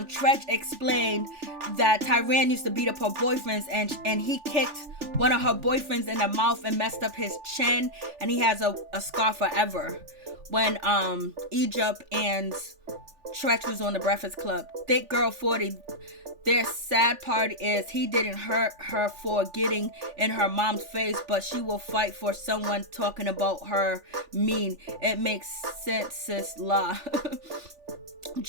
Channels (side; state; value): left; late; 3.4 ms